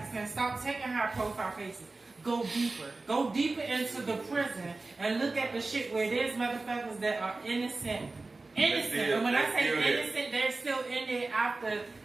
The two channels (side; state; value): left; quieter; 3.4 dB